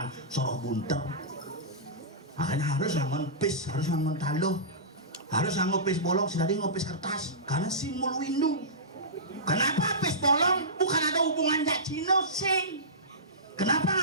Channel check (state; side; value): normal; both; correlation -0.20